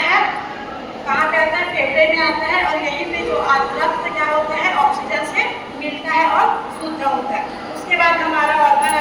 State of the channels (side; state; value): both; identical; correlation 1.00